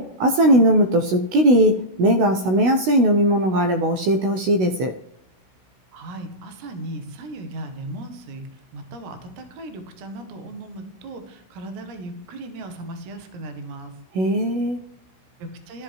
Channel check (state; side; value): late; left; 16 ms